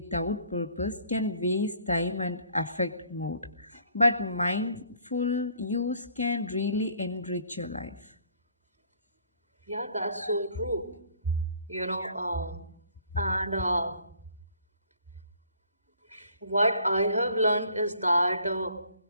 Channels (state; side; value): inverted; both; correlation -0.59